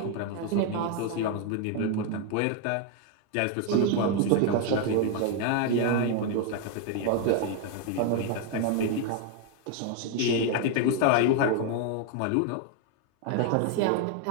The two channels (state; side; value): different; both; correlation 0.01